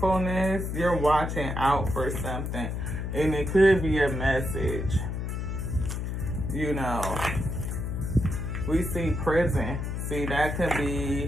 You're watching out for something. And it could be a message. You know. We see prison. See, that could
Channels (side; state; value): left; noise; hum, 3 dB below the sound